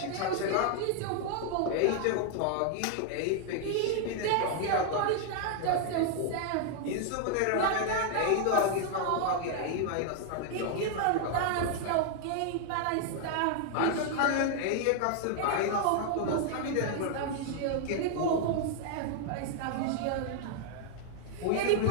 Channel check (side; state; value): both; different; correlation 0.00